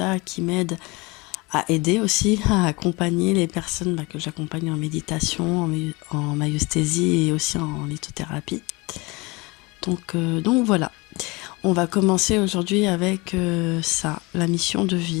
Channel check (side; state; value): right; quieter; 25.3 dB